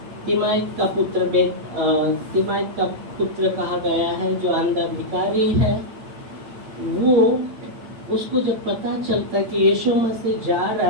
तिमाइत का पुत्र कहा गया है जो अंधा भिखारी है, वो उसको जब पता चलता कि यीशु मसीह जा रहा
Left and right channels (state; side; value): late; left; 8.8 ms